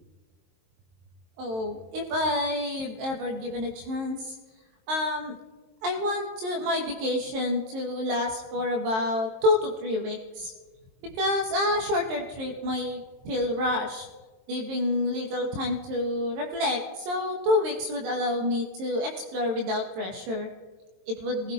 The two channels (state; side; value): late; left; 22 ms